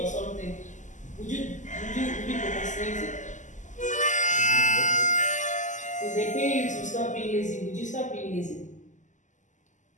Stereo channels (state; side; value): late; right; 0.36 ms